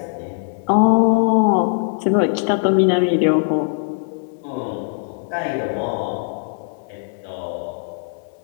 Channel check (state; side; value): silent; right; 60 dB below the other